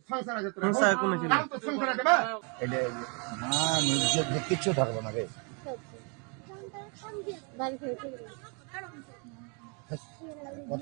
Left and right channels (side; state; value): left; quieter; 35.3 dB